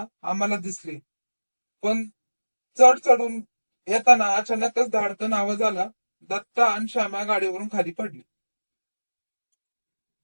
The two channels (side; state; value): both; inverted; correlation -1.00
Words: आम्हाला दिसली. पण चढ चढून येताना अचानकच धाडकन आवाज आला. दत्ता आणि श्यामा गाडीवरून खाली पडली.